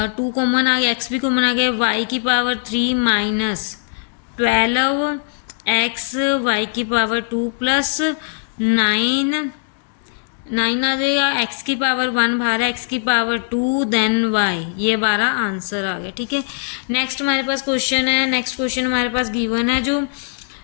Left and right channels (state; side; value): silent; right; 66 dB below the other